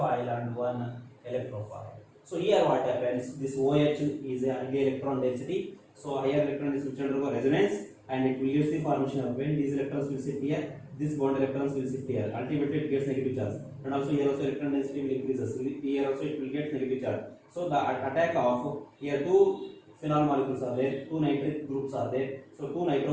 and one electrophile. So here what happens, this OH is a high electron density, so higher electron density will undergo resonance and it will use the formation of, when these electrons will sit here, this bond electrons will sit here, ultimately it gets negative charge, and also here also electron density will increases, here also it will get negative charge. So the attack of, here two phenol molecules are there, two nitric groups are there, so two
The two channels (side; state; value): both; identical; correlation 1.00